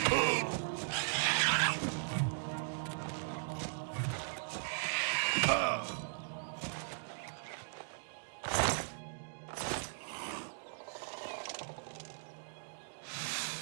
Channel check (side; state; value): left; silent; digital silence